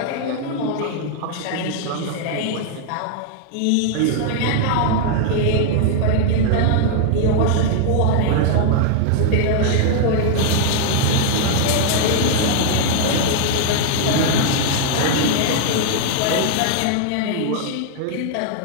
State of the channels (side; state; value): both; different; correlation 0.00